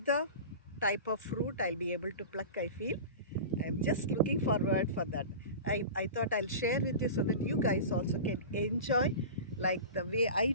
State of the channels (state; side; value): inverted; both; correlation -0.32